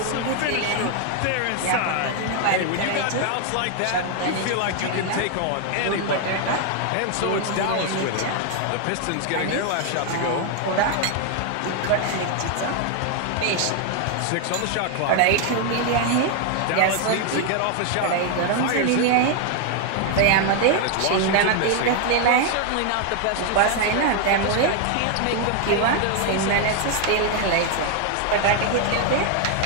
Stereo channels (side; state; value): both; different; correlation 0.00